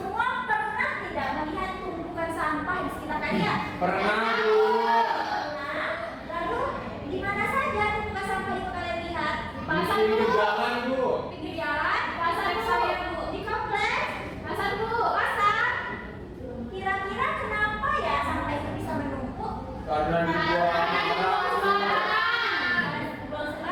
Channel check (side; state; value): both; identical; correlation 1.00